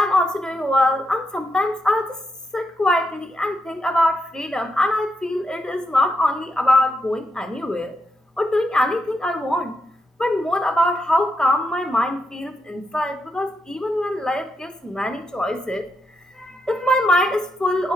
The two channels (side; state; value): both; normal; correlation 0.82